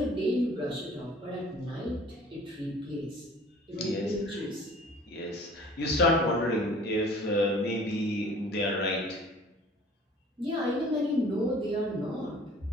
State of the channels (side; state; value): both; normal; correlation 0.50